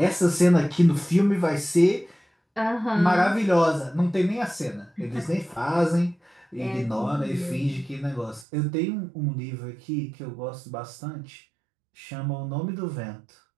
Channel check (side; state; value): left; drops out; at 8.5 s